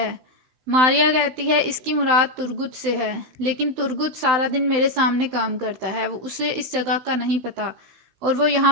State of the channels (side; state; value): left; late; 16 ms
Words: ماریا کہتی ہے اس کی مراد ترگت سے ہے، لیکن ترگت سارا دن میرے سامنے کام کرتا ہے، اسے اس جگہ کا نہیں پتا اور وہ یہاں